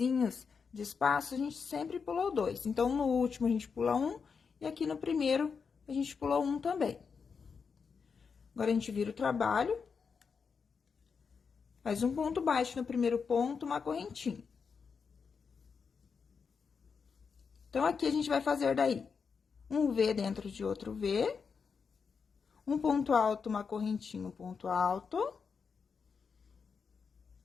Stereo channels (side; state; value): right; quieter; 5.7 dB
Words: de espaço, a gente sempre pulou 2. Então, no último, a gente pula 1, e aqui no primeiro, a gente pulou 1 também. Agora, a gente vira o trabalho. Faz um ponto baixo no primeiro ponto, uma correntinha. Então, aqui a gente vai fazer daí um V dentro de outro V. Um ponto alto, uma correntinha, um ponto alto.